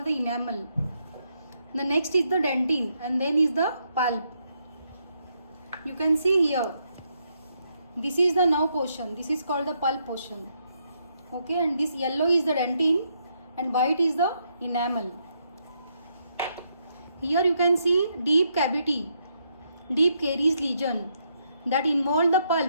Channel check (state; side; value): inverted; both; correlation -0.77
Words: the enamel. The next is the dentine and then is the pulp. You can see here, this is the nerve portion, this is called the pulp portion. Okay, and this yellow is the dentine and white is the enamel. Here you can see deep cavity, deep caries lesion that involve the